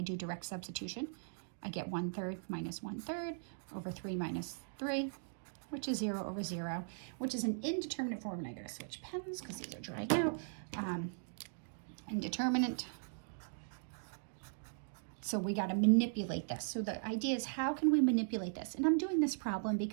do direct substitution, I get 1/3 minus 1/3 over 3 minus 3, which is 0 over 0, which is an indeterminate form. And I gotta switch pens because these are drying out. Indeterminate. So we got to manipulate this. So the idea is, how can we manipulate this? And I'm doing this problem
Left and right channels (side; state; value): left; silent; digital silence